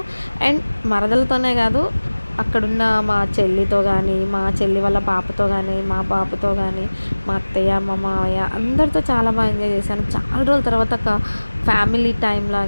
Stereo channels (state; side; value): inverted; both; correlation -1.00